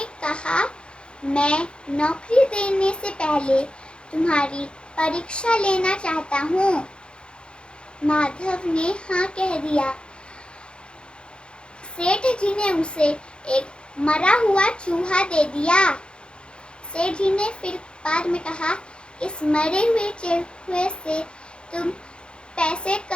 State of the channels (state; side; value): late; right; 0.054 ms